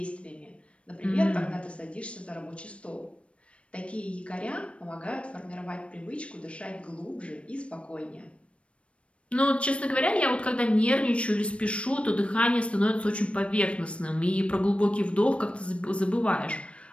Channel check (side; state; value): right; late; 0.061 ms